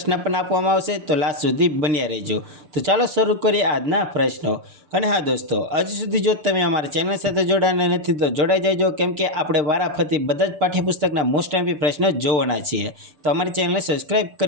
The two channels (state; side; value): late; left; 6.8 ms